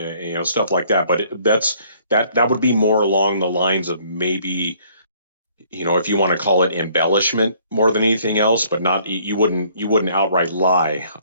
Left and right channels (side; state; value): both; inverted; correlation -0.61